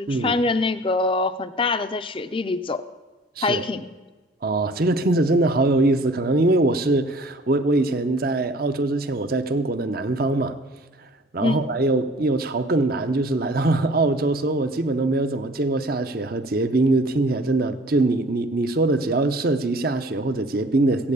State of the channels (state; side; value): normal; both; correlation 0.50